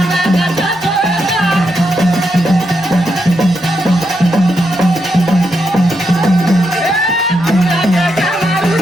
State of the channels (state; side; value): normal; both; correlation 0.82